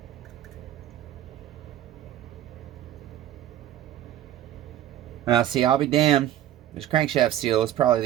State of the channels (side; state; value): left; quieter; 12.3 dB